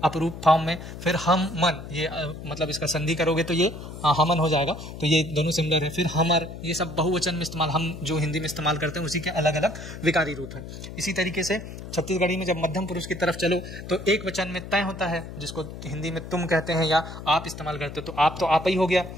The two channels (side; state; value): left; noise; hum, 11 dB below the sound